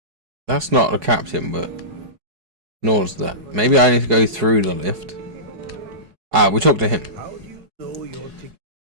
that's not the captain, but nor's that. Maybe I need to go through the lift. Ah, we talked to him. How do you know your ticket?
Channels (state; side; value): late; left; 4.7 ms